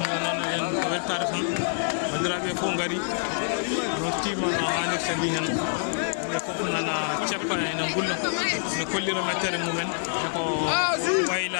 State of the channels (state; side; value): silent; right; digital silence